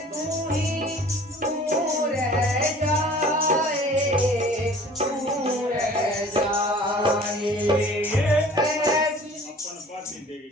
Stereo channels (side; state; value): both; normal; correlation 0.48